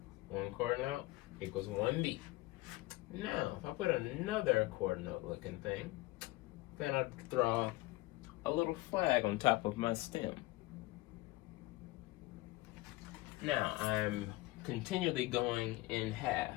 1/4 note equals 1 beat. Now, if I put another quarter note looking thing, then I draw a little flag on top of my stem. Now, I'm continually going in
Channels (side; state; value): right; quieter; 19.9 dB